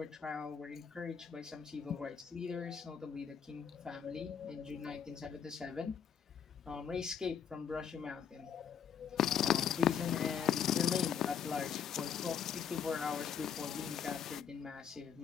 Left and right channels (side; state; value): right; quieter; 7.9 dB